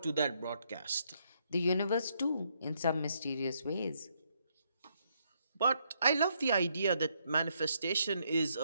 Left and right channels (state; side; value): inverted; both; correlation -0.75